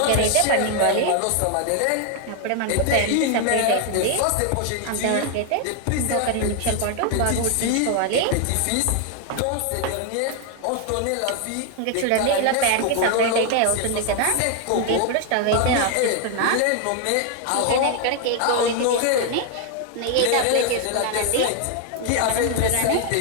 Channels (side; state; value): both; different; correlation 0.00